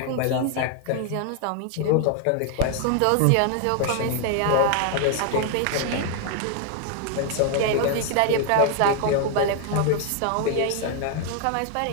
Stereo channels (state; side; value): different; both; correlation 0.00